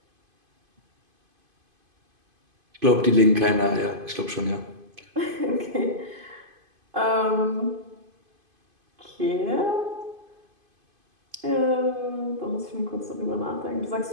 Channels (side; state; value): left; late; 2.5 ms